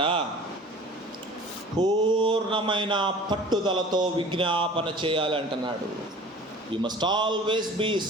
పూర్ణమైన పట్టుదలతో విజ్ఞాపన చేయాలి అంటున్నాడు. You must always be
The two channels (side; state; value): both; normal; correlation 0.44